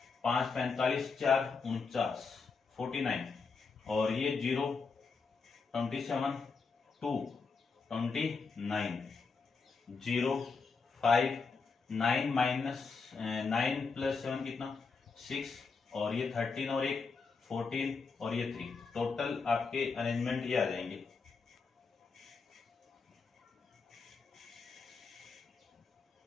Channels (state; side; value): quieter; right; 4.8 dB